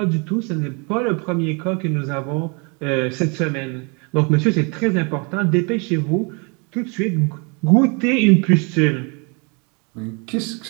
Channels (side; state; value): left; quieter; 32.9 dB